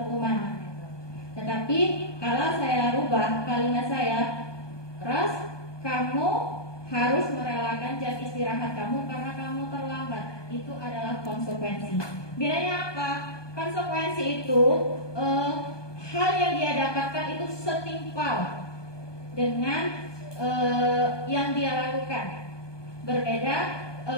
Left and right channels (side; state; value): right; late; 1.2 ms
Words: hukuman. Tetapi kalau saya rubah kalimat saya, Ros, kamu harus merelakan jam istirahat kamu karena kamu terlambat. Itu adalah konsekuensi. Bedanya apa? Konsekuensi itu hal yang dia dapatkan itu setimpal dengan yang dia lakukan. Berbeda